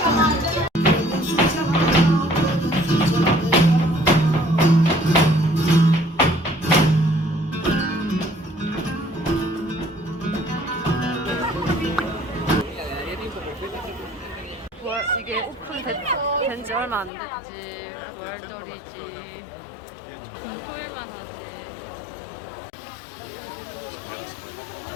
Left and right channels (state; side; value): drops out; right; at 17.1 s